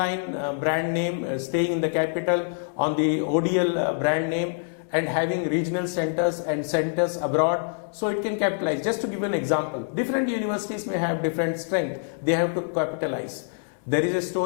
brand name, staying in the capital, on the ODL brand name, and having regional centers and centers abroad, so it can capitalize. Just to give an example, different universities may have different strength, they have to capitalize. There is a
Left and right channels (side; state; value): right; silent; digital silence